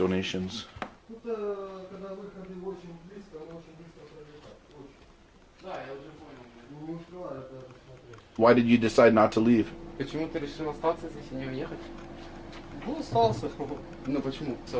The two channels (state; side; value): identical; both; correlation 1.00